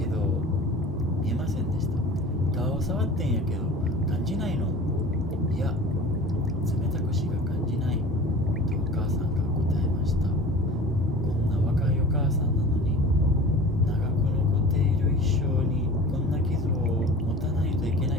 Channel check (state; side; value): normal; both; correlation 0.40